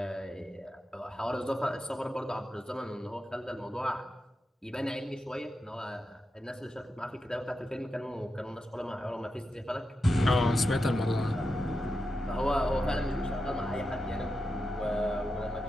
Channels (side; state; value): both; normal; correlation 0.89